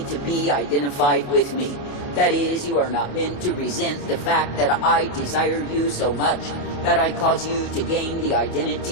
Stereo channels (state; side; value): late; right; 28 ms